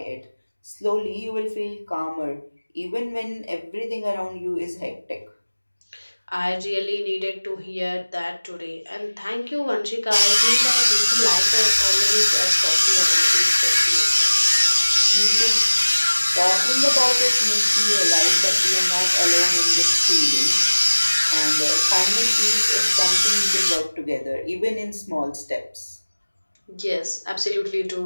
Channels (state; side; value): inverted; both; correlation -1.00